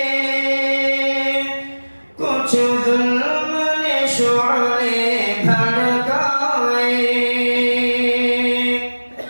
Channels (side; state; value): both; inverted; correlation -1.00